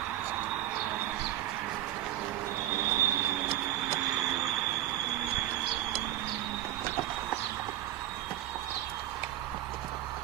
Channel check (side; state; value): left; quieter; 13.3 dB